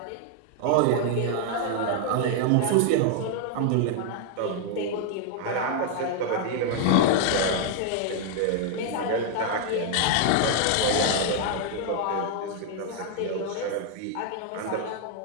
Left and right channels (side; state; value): both; different; correlation 0.00